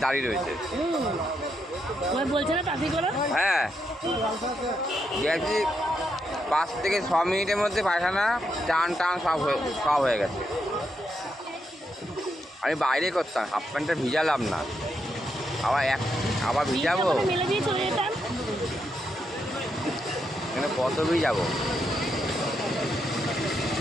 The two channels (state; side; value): normal; both; correlation 0.81